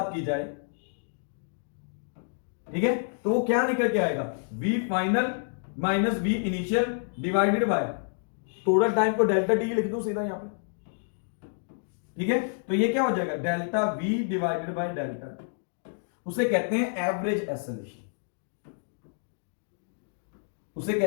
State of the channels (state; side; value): silent; right; digital silence